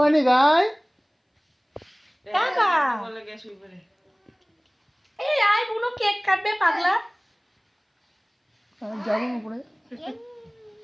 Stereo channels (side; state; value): both; identical; correlation 1.00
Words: গায় দাদা এই আয় বুনো কেক কাটবে পাগলা যেমন করে